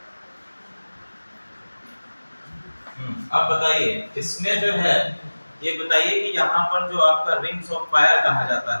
अब बताइए इसमें जो है, ये बताइए कि यहाँ पर जो आपका रिंग्स ऑफ फायर कहा जाता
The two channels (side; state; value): both; inverted; correlation -1.00